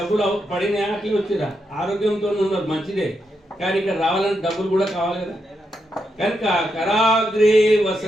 పడిన అట్లా వచ్చిరా, ఆరోగ్యంతో ఉన్నారు, మంచిదే. కానీ ఇక్కడ రావాలంటే డబ్బులు కూడా కావాలి కదా. కనుక కరాగ్రే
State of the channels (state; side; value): normal; both; correlation 0.83